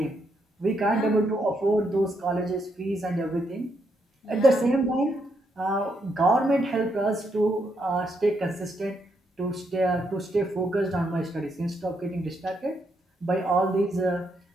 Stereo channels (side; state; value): both; normal; correlation 0.78